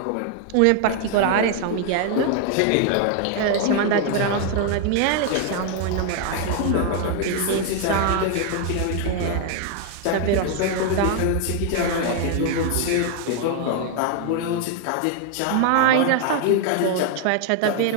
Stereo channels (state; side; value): different; both; correlation 0.00